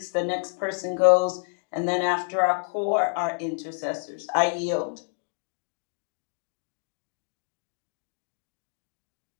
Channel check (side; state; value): right; silent; 59 dB below the other